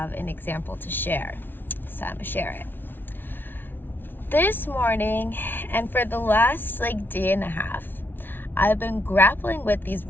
an example to share. So I'm going to share it. This morning, and for the last day and a half, I've been grappling with these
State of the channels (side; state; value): right; late; 0.098 ms